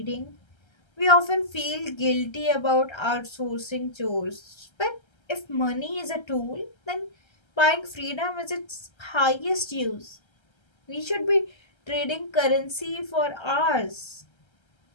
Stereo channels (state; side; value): late; right; 1.3 ms